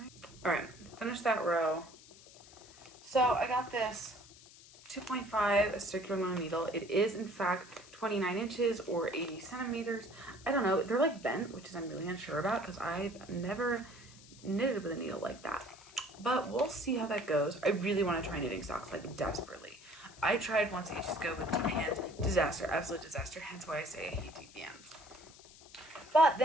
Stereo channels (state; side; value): noise; left; hiss, 21 dB below the sound